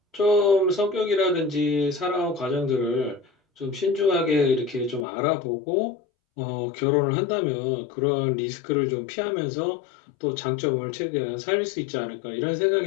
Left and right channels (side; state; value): right; drops out; at 5.1 s